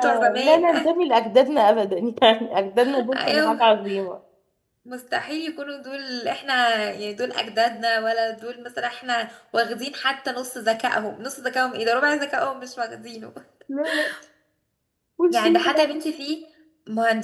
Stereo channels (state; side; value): identical; both; correlation 1.00